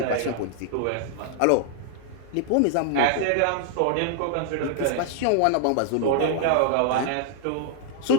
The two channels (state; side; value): different; both; correlation -0.01